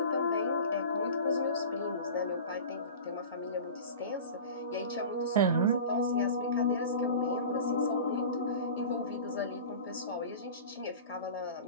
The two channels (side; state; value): both; inverted; correlation -0.35